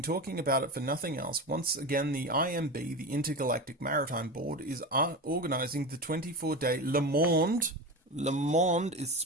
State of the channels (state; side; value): normal; both; correlation 0.24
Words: about it for nothing else. Once again, the IMB, the Intergalactic Maritime Board, is organizing the 24-day Le Monde. Le Monde is